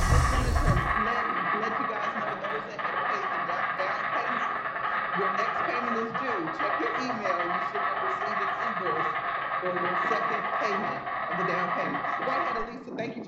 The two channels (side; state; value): both; identical; correlation 1.00